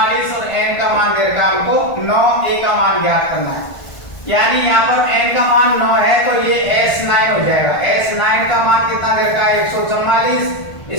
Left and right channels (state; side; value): late; right; 1.5 ms